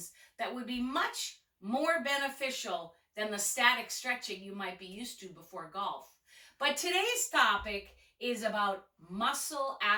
that would be much more beneficial than the static stretching you might be used to before golf. But today's topic is about muscle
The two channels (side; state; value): both; identical; correlation 1.00